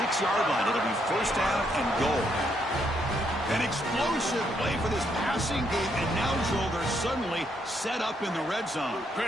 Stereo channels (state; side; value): normal; both; correlation 0.75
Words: line. It'll be 1st down and goal. An explosive play for this passing game, and now, Joel, they're suddenly set up in the red zone.